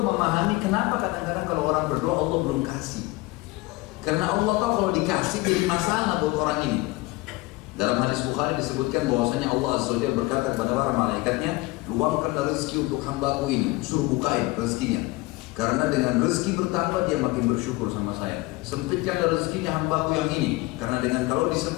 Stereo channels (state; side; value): quieter; right; 21.7 dB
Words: memahami kenapa kadang-kadang kalau orang berdoa Allah belum kasih. Karena Allah tahu kalau dikasih jadi masalah buat orang ini. Dalam hadis Bukhari disebutkan bahwasanya Allah Azza wa Jalla berkata kepada para malaikatnya, luangkanlah rezeki untuk hambaku ini, suruh bukain rezekinya. Karena dengan rezeki bertambah dia makin bersyukur sama saya. Sempitkanlah rezekinya hambaku yang ini, karena dengan kalau